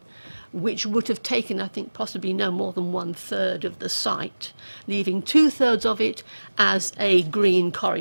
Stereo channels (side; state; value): both; inverted; correlation -1.00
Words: which would have taken, I think, possibly no more than 1/3 of the site, leaving 2/3 of it as a green